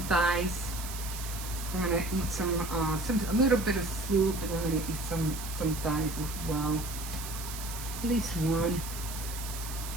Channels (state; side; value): noise; right; hiss, 9 dB below the sound